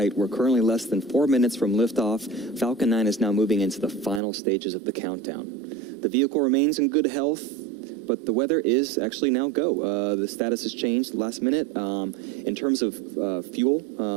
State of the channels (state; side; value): drops out; left; at 4.2 s